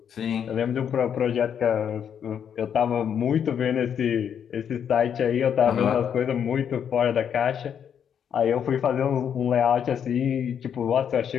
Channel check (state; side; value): quieter; right; 8.3 dB